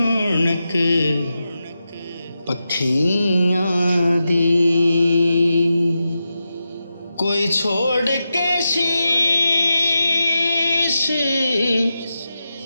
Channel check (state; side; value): inverted; both; correlation -0.90